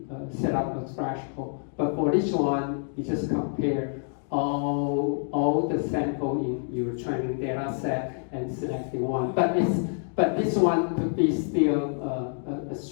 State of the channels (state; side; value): silent; right; 60 dB below the other